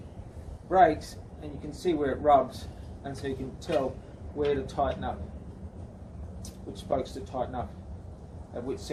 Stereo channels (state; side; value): identical; both; correlation 1.00